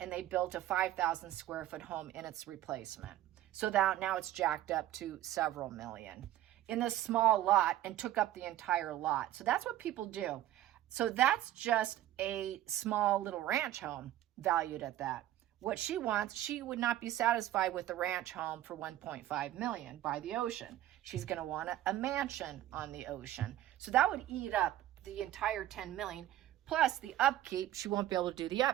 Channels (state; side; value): quieter; left; 13.6 dB